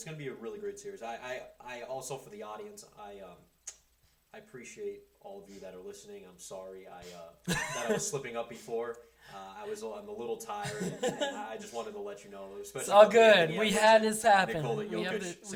going to be a really great series. I also, for the audience, I appreciate all of you that are listening. I'm sorry that I was slipping up before. I'm a little tired, and I just wanted to let you know. It's all good. We had this happen. We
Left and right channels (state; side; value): identical; both; correlation 1.00